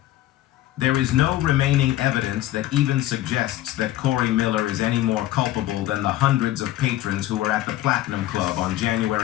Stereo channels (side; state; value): right; quieter; 14.7 dB